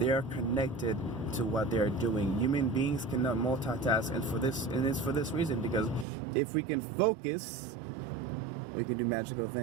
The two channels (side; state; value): left; drops out; at 6.1 s